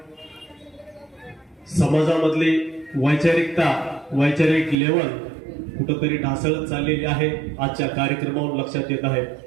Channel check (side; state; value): left; drops out; at 4.8 s